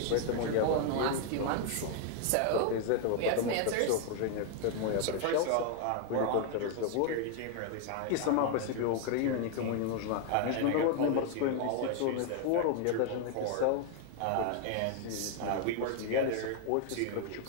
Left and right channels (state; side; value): different; both; correlation 0.01